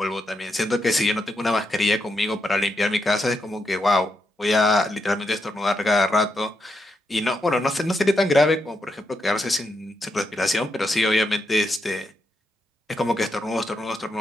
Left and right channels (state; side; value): normal; both; correlation 0.83